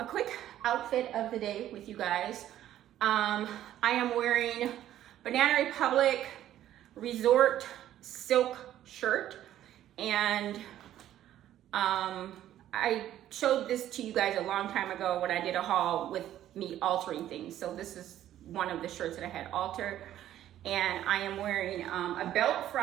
a quick outfit of the day with you guys. I am wearing Banana Republic Resort Silk shirt, and I showed this to you guys a long time ago when I did a haul with me altering things. So this is one of the shirts that I had altered, and I am wearing a belt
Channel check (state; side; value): quieter; left; 12.2 dB